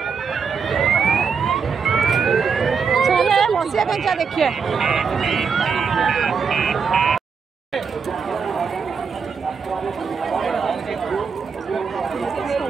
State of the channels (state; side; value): quieter; left; 5.8 dB